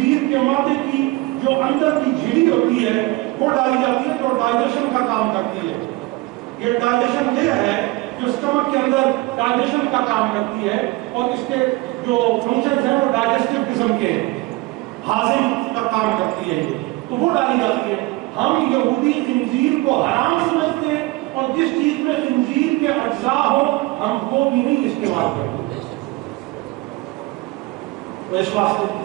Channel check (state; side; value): quieter; left; 21.7 dB